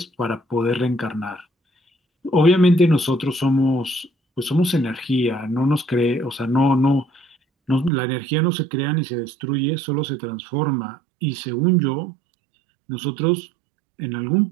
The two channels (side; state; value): left; drops out; at 7.9 s